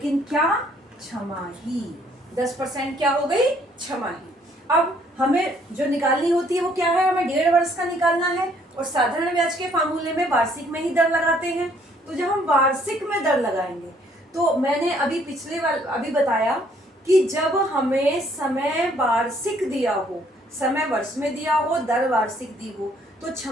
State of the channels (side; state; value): both; normal; correlation 0.64